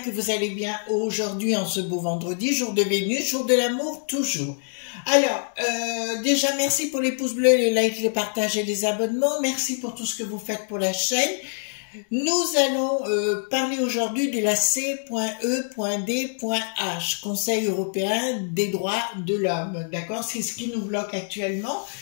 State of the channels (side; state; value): right; silent; digital silence